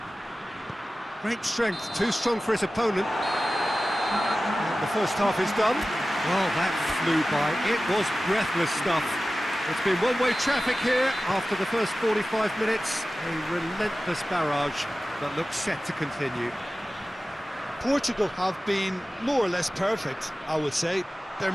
Great strength, too strong for his opponent. And the first half is done. Well, that flew by. It was breathless stuff. It's been one-way traffic here after the first 45 minutes. A relentless barrage that looks set to continue. Portugal have been more or less perfect, I would say. Their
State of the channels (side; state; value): both; normal; correlation 0.96